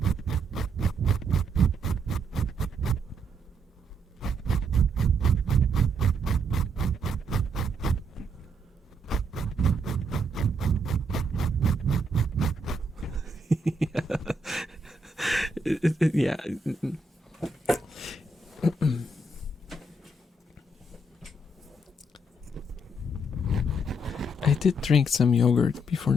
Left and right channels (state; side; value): normal; both; correlation 0.75